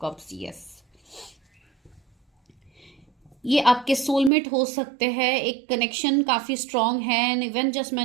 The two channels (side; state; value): left; drops out; at 4.3 s